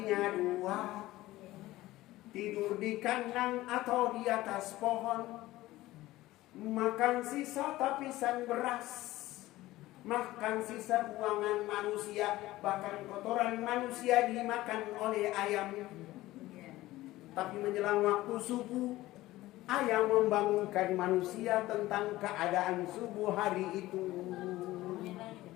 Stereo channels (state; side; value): quieter; right; 17.1 dB